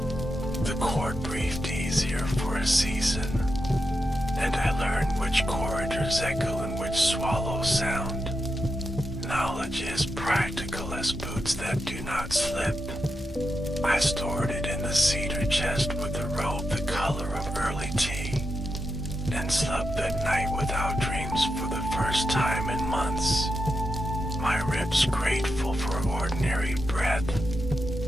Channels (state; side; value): normal; both; correlation 0.87